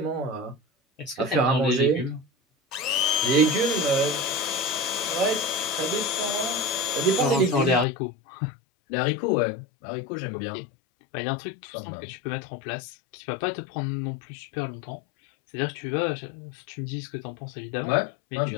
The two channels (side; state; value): right; drops out; at 7.9 s